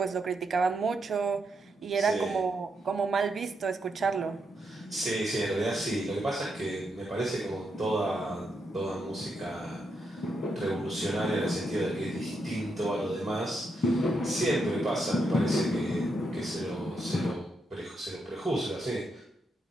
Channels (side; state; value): both; normal; correlation 0.82